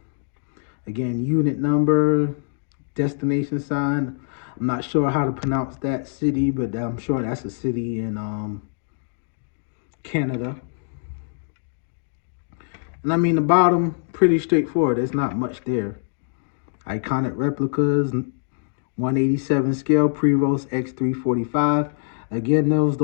Again, unit number, destination sign. I'm not sure how to pronounce that city, but I'm sure that's a city in Canada. And I mean, the bottom, pretty straightforward. There's not much there. Iconic replicas, 187 scale, Prevost X3-45. Again,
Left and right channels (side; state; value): right; silent; digital silence